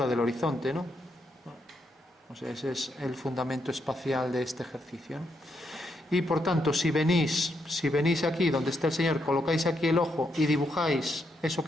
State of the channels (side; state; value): both; normal; correlation 0.79